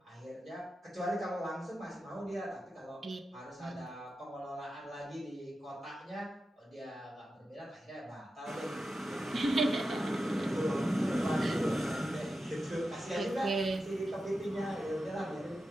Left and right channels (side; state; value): both; normal; correlation 0.91